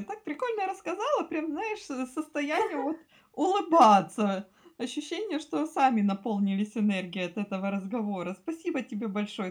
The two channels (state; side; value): identical; both; correlation 1.00